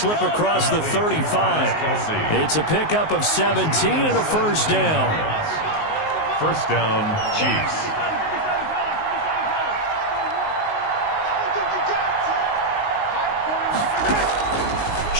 across the 35. It's a pickup of 17 and a 1st down. 1st down, Chiefs.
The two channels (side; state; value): right; late; 19 ms